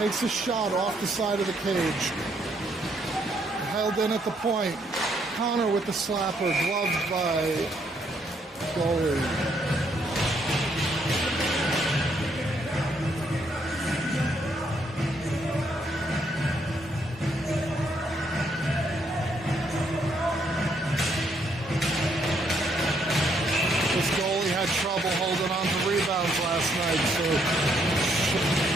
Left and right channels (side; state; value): both; normal; correlation 0.72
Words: a shot off the side of the cage. Held in at the point. Connor with the slapper, gloved by goalie. This goalie had trouble holding on to rebounds last night, so